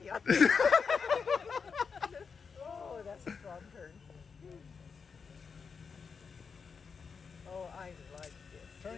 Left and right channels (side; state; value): right; quieter; 5.6 dB